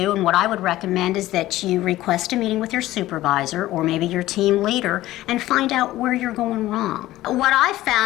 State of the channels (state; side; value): quieter; right; 15.8 dB